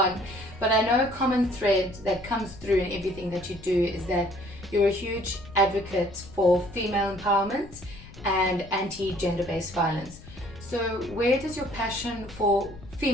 But I know a common thread that comes through in everything that you do is that you're a huge advocate for female empowerment and anti-gender-based violence. So where does your passion for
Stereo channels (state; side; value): noise; left; rumble, 18 dB below the sound